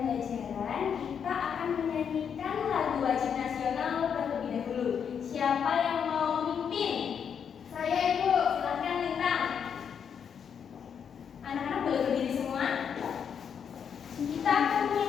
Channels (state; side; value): quieter; right; 7.5 dB